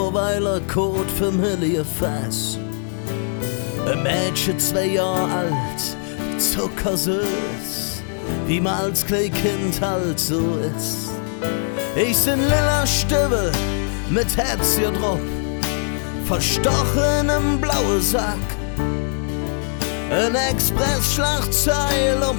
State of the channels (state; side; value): silent; right; 65 dB below the other